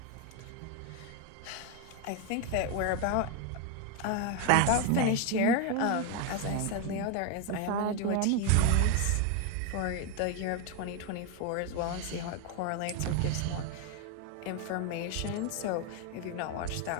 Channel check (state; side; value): different; both; correlation 0.01